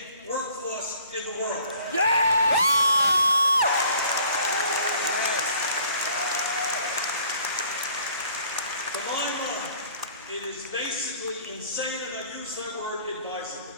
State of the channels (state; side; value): inverted; both; correlation -0.56